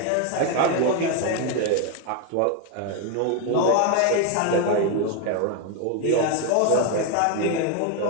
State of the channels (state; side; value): different; both; correlation 0.01